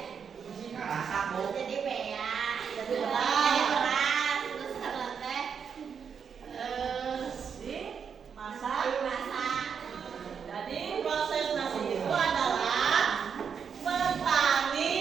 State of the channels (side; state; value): left; quieter; 6.8 dB